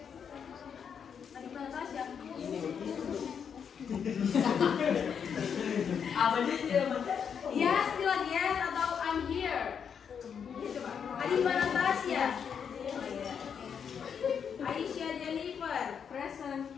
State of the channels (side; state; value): right; quieter; 7.3 dB